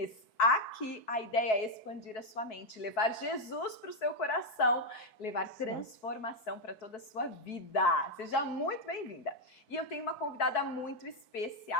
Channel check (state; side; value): late; right; 4.6 ms